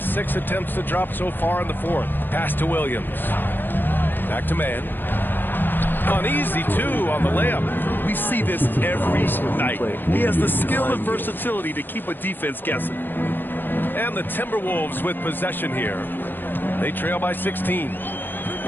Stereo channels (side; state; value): right; late; 0.094 ms